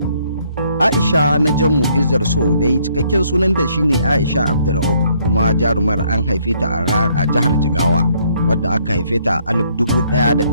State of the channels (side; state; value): both; inverted; correlation -0.67